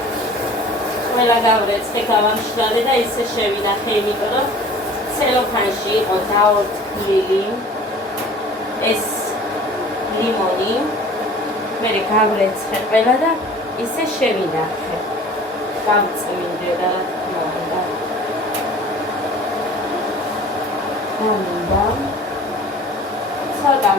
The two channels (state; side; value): normal; both; correlation 0.45